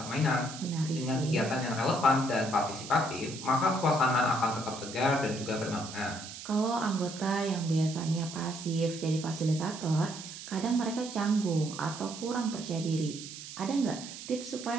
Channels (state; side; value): noise; right; hiss, 11 dB below the sound